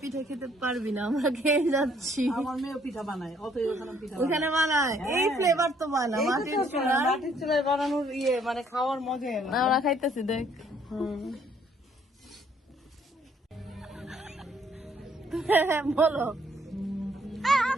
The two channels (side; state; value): both; normal; correlation 0.65